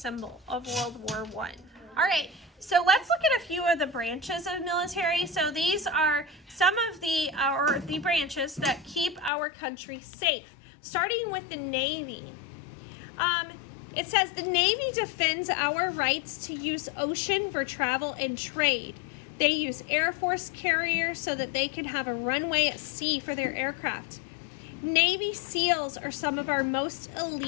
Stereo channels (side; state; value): right; drops out; at 9.3 s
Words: of World War I. All right, so let's look at a few of the branches of military. So these are some of the branches that keep our country safe, starting with the Navy. It says the Navy defends our rights to use ocean for travel and trade. They use Air Force carriers so that they can have a runway at sea for their aircraft. Navy SEALs are some of our most